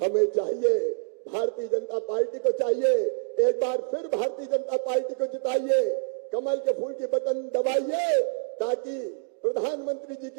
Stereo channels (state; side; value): silent; left; digital silence